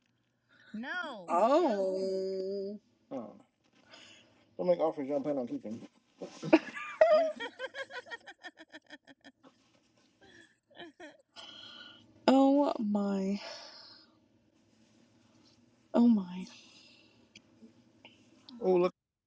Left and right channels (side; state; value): both; identical; correlation 1.00